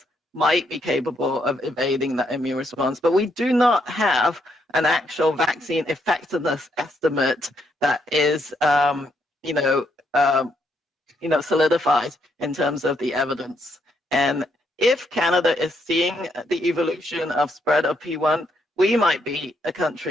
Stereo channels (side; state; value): both; normal; correlation 0.75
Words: might be capable of evading that immune response, but we do not have an actual vaccine effectiveness estimate that is, solidified in terms of the evidence. And if Canada is seeing the evolution of spread of P1, we might be a